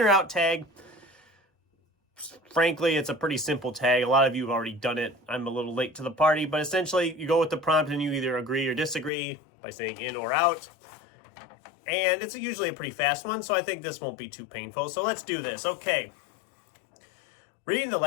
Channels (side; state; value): right; drops out; at 9.1 s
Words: out tag. Frankly, it's a pretty simple tag. A lot of you have already done it. I'm a little late to the party, but essentially you go with the prompt and you either agree or disagree by saying in or out. And it's usually a pretty fast one, so I think this won't be too painful. So let's do this. Okay. Reading the